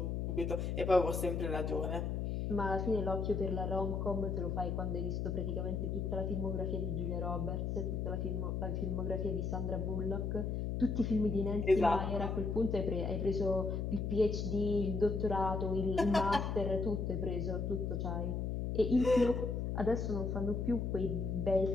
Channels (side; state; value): left; noise; hum, 1 dB below the sound